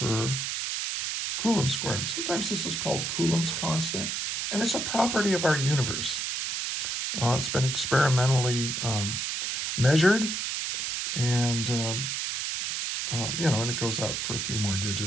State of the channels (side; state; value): right; noise; hiss, 2 dB below the sound